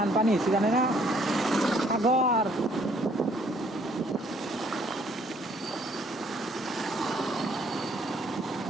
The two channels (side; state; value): both; normal; correlation 0.63